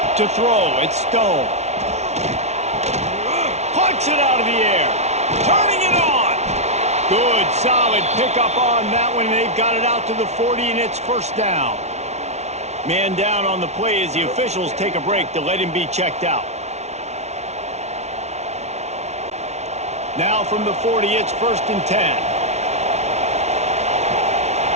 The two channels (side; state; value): left; late; 0.32 ms